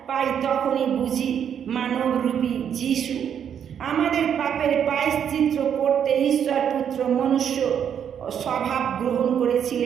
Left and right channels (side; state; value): left; quieter; 8.5 dB